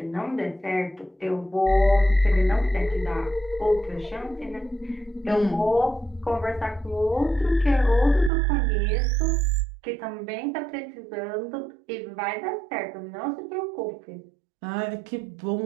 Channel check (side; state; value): left; drops out; at 8.3 s